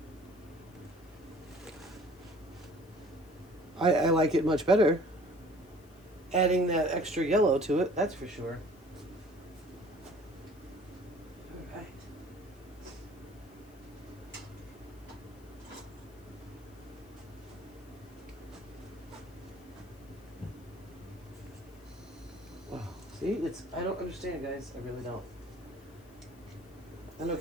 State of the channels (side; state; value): left; noise; hiss, 27 dB below the sound